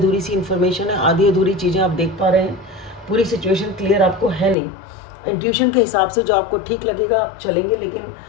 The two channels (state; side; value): drops out; right; at 4.5 s